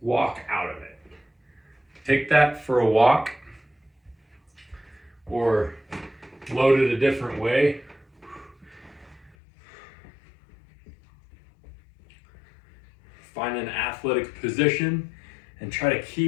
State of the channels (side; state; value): right; drops out; at 9.3 s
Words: Walk out of it. Take that for a walk or load it a different way. Find an athletic position and try to